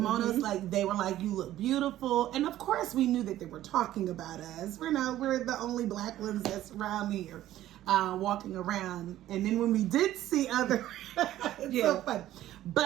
like, they were like, "You look beautiful," and of course, we knew that they were talking about us. We're the only Black ones that's around here, walking around. And then when we did see other, it's so fun.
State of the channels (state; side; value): quieter; left; 13.6 dB